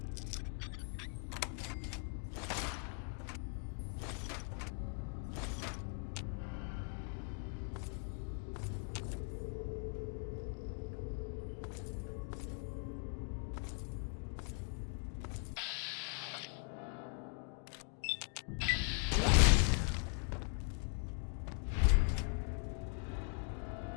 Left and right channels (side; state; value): right; quieter; 39.8 dB